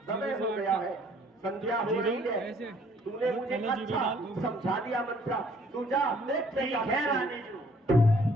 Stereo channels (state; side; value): normal; both; correlation 0.60